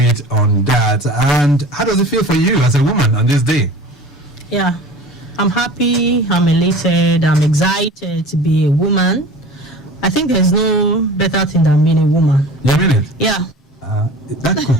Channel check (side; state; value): both; normal; correlation 0.39